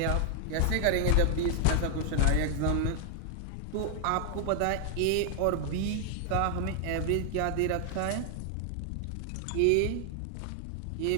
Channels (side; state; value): both; different; correlation 0.00